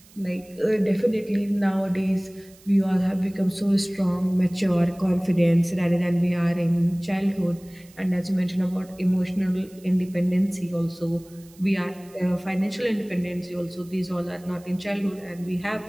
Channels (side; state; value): right; noise; hiss, 26 dB below the sound